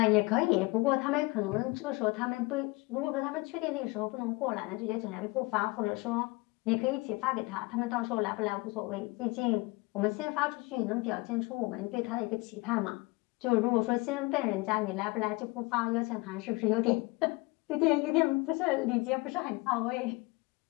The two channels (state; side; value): quieter; right; 24.6 dB